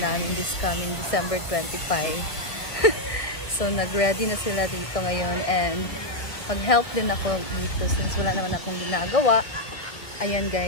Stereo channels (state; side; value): late; right; 1.9 ms